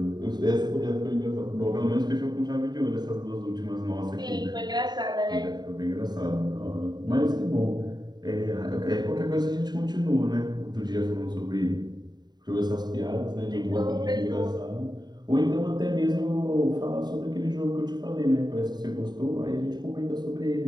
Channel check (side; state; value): left; late; 0.20 ms